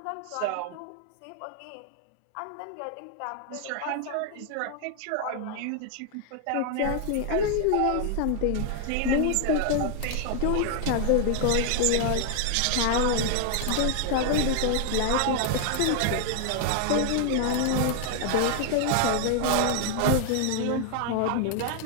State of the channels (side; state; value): both; different; correlation 0.00